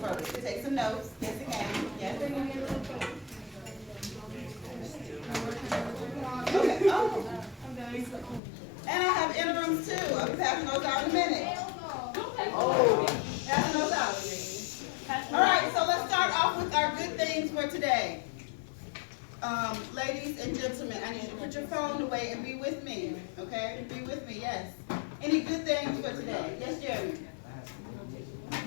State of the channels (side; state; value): right; drops out; at 8.4 s